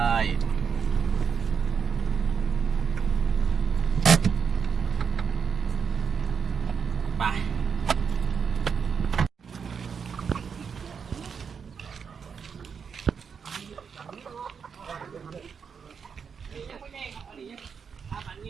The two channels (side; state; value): left; quieter; 6.4 dB